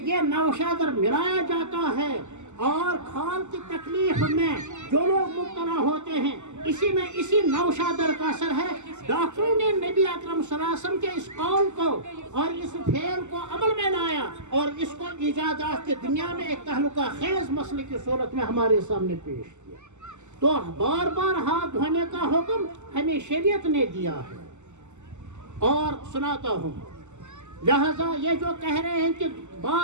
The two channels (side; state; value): left; late; 0.84 ms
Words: یہ نوشادر ملایا جاتا ہے۔ اور کھال کی تکلیف میں جو لوگ مبتلا ہوتے ہیں، اسی نوشادر کا اثر ہے۔ ڈاکٹروں نے نبی اکرم صلی اللہ علیہ وسلم کے اس قول کو اور اس فعل کو عمل میں لایا اور اس کو ایجادات کی دنیا میں ایک تہلکہ خیز مسئلے کی صورت میں ہمارے سامنے پیش کیا۔ تو بار بار ہاتھ دھونے کا حکم ہمیں شریعت نے دیا ہے، اور سناتا ہوں، لہذا یہ جو کہہ رہے ہیں کہ